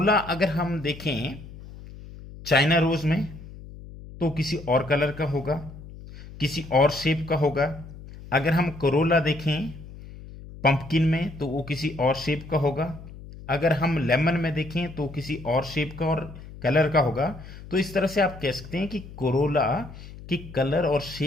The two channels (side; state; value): left; noise; hum, 15 dB below the sound